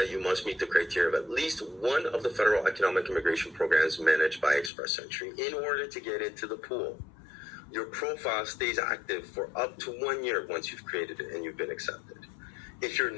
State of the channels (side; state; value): right; drops out; at 4.7 s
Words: you must meet the criteria of at least one of the federal economic immigration programs managed by Express Entry in order to get into the pool. Your profile stays active for up to 1 year once you've created it and you've been accepted. If you're